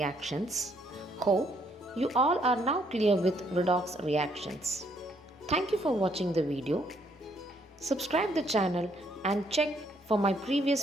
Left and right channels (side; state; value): both; normal; correlation 0.69